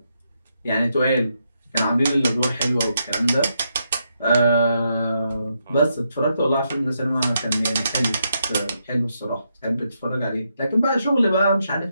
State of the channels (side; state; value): both; inverted; correlation -0.81